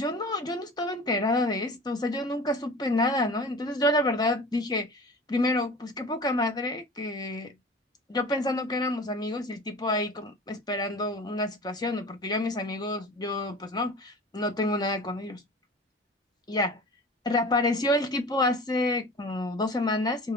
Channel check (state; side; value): normal; both; correlation 0.38